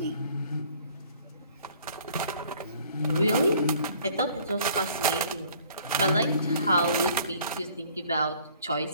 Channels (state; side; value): inverted; both; correlation -0.56